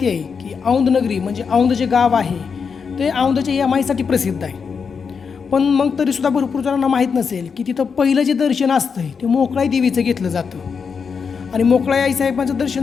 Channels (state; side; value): quieter; right; 5.9 dB